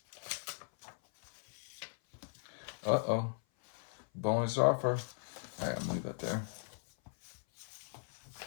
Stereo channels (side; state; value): right; silent; 52 dB below the other